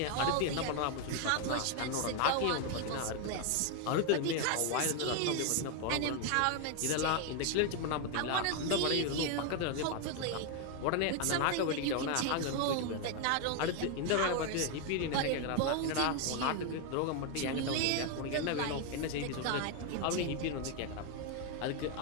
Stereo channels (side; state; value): both; different; correlation 0.01